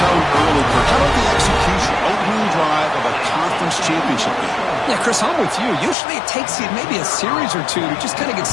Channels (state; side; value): drops out; right; at 6.0 s